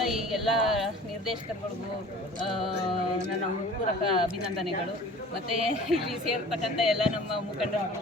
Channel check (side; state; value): both; normal; correlation 0.44